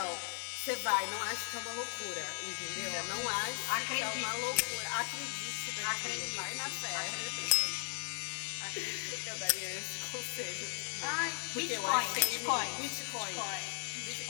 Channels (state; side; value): silent; right; digital silence